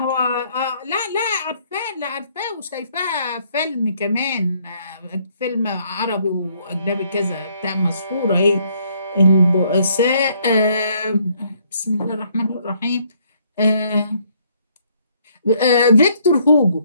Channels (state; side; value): inverted; both; correlation -0.67